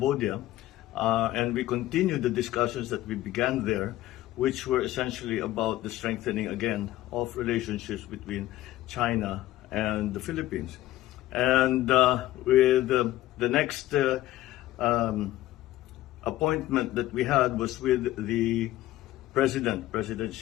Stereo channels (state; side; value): quieter; right; 15.4 dB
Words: and we continued the discussions that we began there, which were essentially about the strengthening again of relationships between China and the Philippines. And with the next appointment that we had was with the President